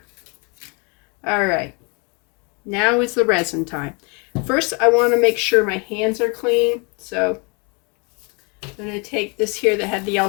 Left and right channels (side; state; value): right; quieter; 32.1 dB